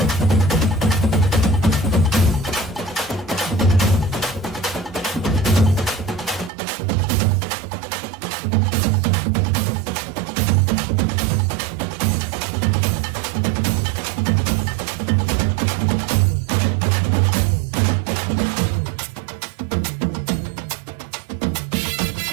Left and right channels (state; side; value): drops out; left; at 6.5 s